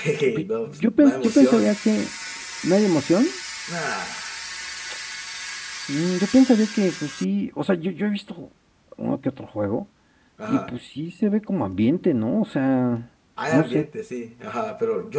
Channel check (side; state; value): both; identical; correlation 1.00